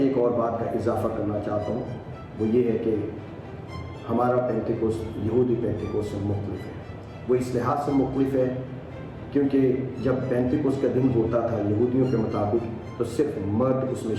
اور بات کا اضافہ کرنا چاہتا ہوں, وہ یہ ہے کہ ہمارا پینتیکوس یہودی پینتیکوس سے مختلف ہے. وہ اس لحاظ سے مختلف ہے کیونکہ جب پینتیکوس کا دن ہوتا تھا یہودیوں کے مطابق تو صرف مرد اس میں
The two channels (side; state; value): both; identical; correlation 1.00